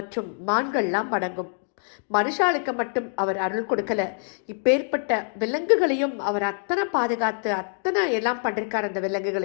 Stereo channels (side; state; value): right; silent; digital silence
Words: மான்கள்லாம் அடங்கும். மனுஷாளுக்கு மட்டும் அவர் அருள் கொடுக்கல, இப்பேற்பட்ட விலங்குகளையும் அவர் அத்தனை பாதுகாத்து அத்தனை எல்லாம் பண்ணிருக்கார் அந்த